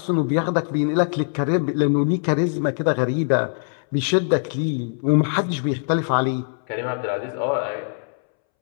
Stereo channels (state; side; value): silent; right; 64 dB below the other